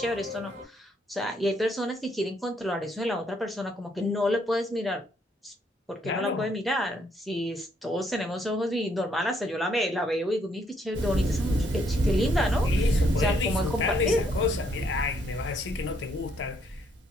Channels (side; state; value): both; normal; correlation 0.70